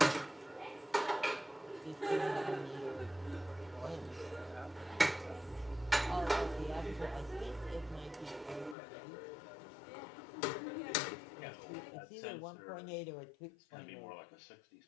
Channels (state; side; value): drops out; right; at 8.8 s